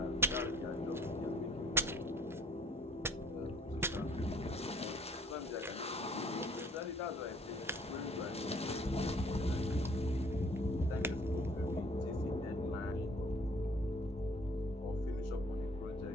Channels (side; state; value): both; normal; correlation 0.56